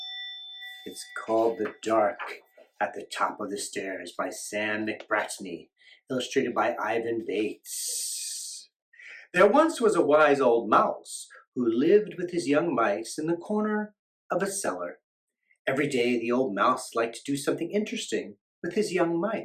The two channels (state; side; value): identical; both; correlation 1.00